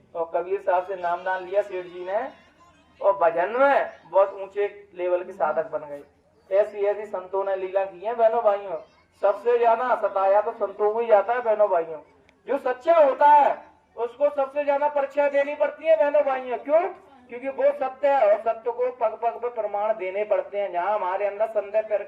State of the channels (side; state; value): both; identical; correlation 1.00